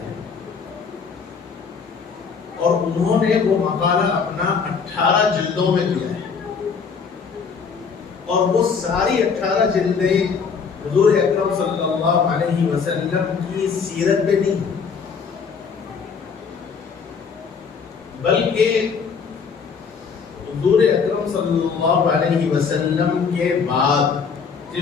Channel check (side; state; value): right; quieter; 5.8 dB